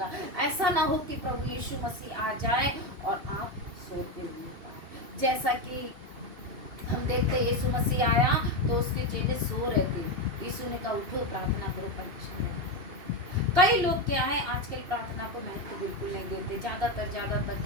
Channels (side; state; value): left; late; 2.8 ms